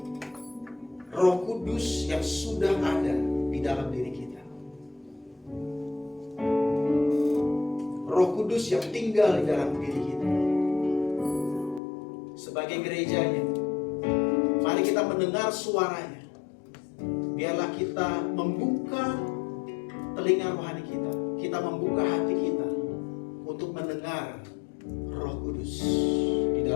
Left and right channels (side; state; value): right; drops out; at 11.8 s